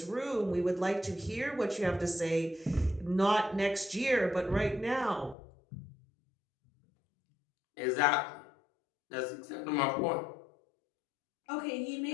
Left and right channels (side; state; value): right; drops out; at 5.4 s